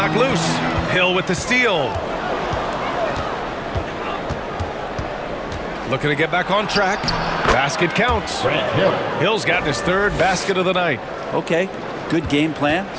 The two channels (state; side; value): identical; both; correlation 1.00